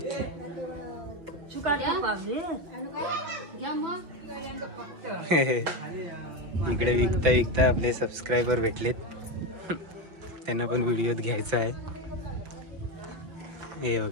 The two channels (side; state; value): left; late; 6.0 ms